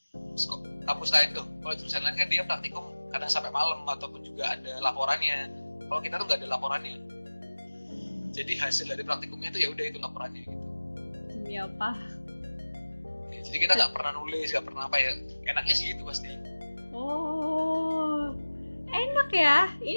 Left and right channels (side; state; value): both; inverted; correlation -1.00